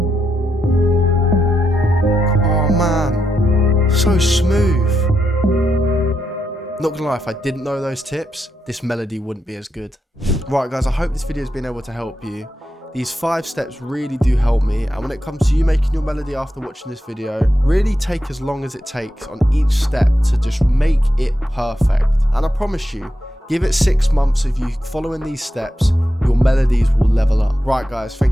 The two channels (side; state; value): both; normal; correlation 0.85